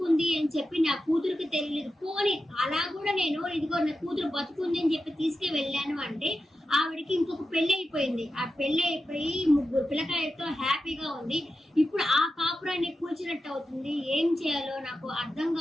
అని చెప్పి నా కూతురికి తెలియలేదు, పోని అలా కూడా నేను ఇదిగో నా కూతురు బతుకుంది అని చెప్పి తీసుకు వెళ్ళాను అంటే ఆవిడకి ఇంకొక పెళ్లి అయిపోయింది. ఆ పెళ్లి అయిపోయి 3 పిల్లకాయలతో హ్యాపీగా ఉంది. ఇప్పుడు ఆ కాపురాన్ని కూల్చినట్టు అవుతుంది. ఏం చేయాలో నాకు అర్థం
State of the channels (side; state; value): both; normal; correlation 0.91